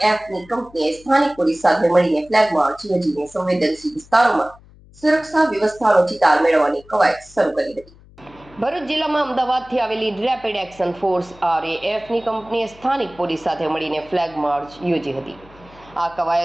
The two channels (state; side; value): noise; left; hum, 25 dB below the sound